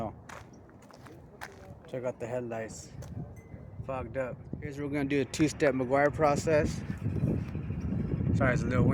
Check out the headlights. Fogged up. Here's where we're going to do the 2-step Meguiar process. Sorry, it's a little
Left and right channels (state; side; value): identical; both; correlation 1.00